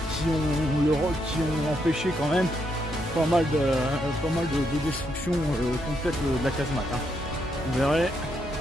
ont empêché quand même pas mal de destruction complète de la casemate. Hein. Vous verrez,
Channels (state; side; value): normal; both; correlation 0.78